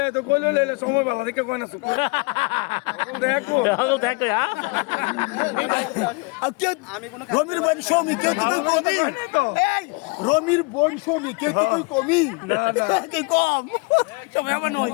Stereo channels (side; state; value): right; quieter; 29.0 dB